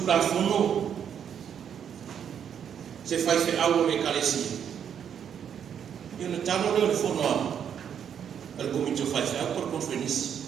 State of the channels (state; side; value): quieter; left; 8.4 dB